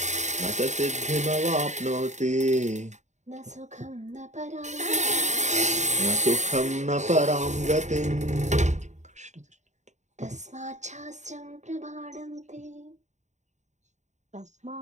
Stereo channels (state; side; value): late; left; 0.34 ms